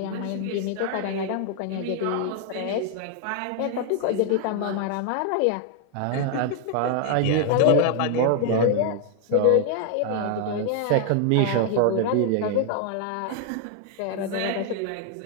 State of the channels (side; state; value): both; different; correlation 0.00